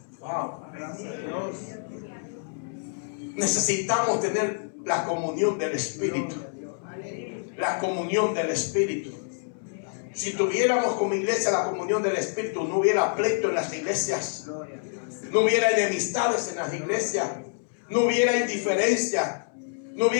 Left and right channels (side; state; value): right; silent; 60 dB below the other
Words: Wow. Necesitamos tener la comunión del Espíritu. La comunión del Espíritu. Si tuviéramos como iglesia la comunión del Espíritu, no hubiera pleito en las iglesias, no hubiera enemistades en las iglesias, no hubiera indiferencia, no